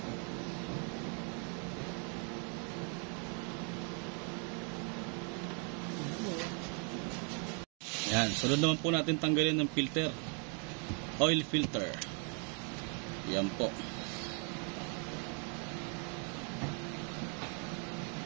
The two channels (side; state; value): left; quieter; 38.7 dB